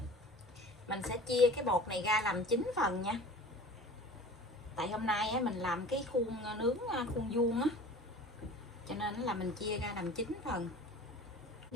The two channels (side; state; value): both; normal; correlation 0.41